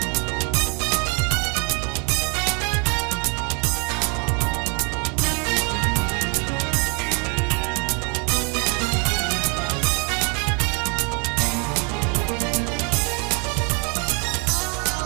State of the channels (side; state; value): left; quieter; 35.0 dB